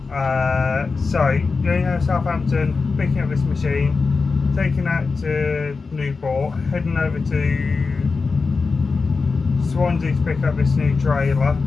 So going out to Southampton, picking up this machine, taking that to Newport, heading over to Swansea to pick up this new trailer,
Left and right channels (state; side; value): quieter; right; 4.4 dB